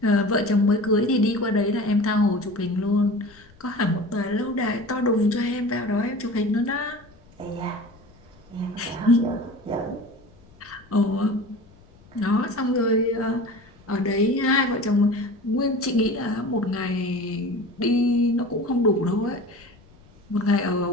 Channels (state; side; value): noise; left; rumble, 27 dB below the sound